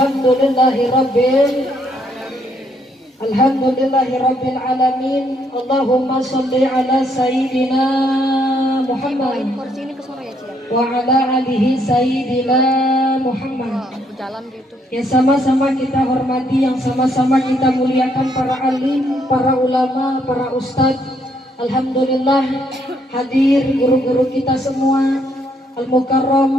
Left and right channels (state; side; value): normal; both; correlation 0.71